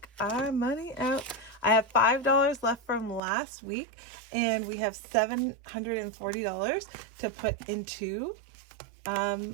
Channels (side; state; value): left; drops out; at 3.2 s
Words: our money out. I have $5 left from last week and we have $740 to put into